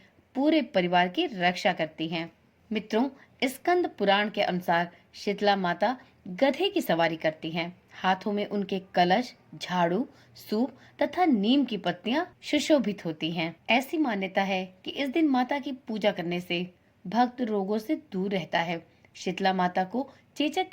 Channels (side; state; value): both; identical; correlation 1.00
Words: पूरे परिवार की रक्षा करती हैं। मित्रों, स्कंद पुराण के अनुसार शीतला माता गधे की सवारी करती हैं। हाथों में उनके कलश, झाड़ू, सूप तथा नीम की पत्तियां सुशोभित होती हैं। ऐसी मान्यता है कि इस दिन माता की पूजा करने से भक्त रोगों से दूर रहता है। शीतला माता को चेचक